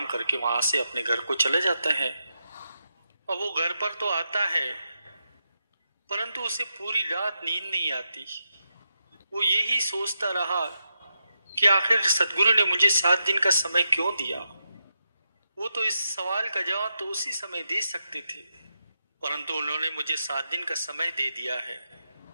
करके वहां से अपने घर को चले जाते हैं। और वो घर पर तो आता है, परंतु उसे पूरी रात नींद नहीं आती। वो यही सोचता रहा कि आखिर सदगुरु ने मुझे 7 दिन का समय क्यों दिया। वो तो इस सवाल का जवाब तो उसी समय दे सकते थे, परंतु उन्होंने मुझे 7 दिन का समय दे दिया है।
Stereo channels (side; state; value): both; inverted; correlation -0.85